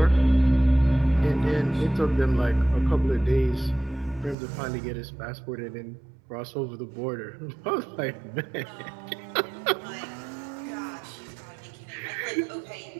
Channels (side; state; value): left; drops out; at 4.4 s